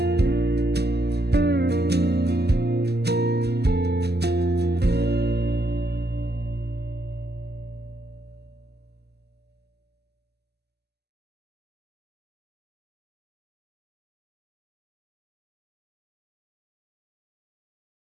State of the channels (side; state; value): left; late; 0.48 ms